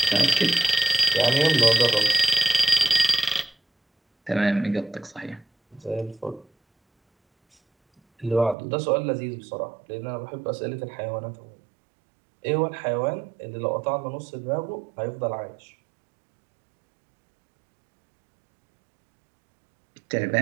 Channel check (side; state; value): left; drops out; at 8.6 s